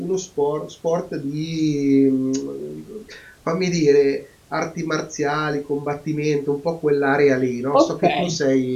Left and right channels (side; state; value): both; identical; correlation 1.00